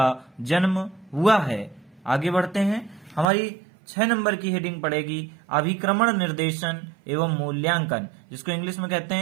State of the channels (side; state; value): left; drops out; at 3.2 s